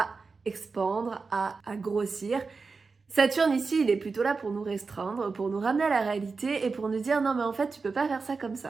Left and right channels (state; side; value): quieter; left; 4.5 dB